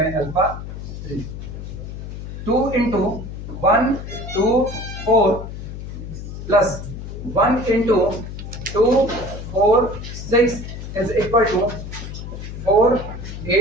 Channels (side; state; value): left; noise; hum, 9 dB below the sound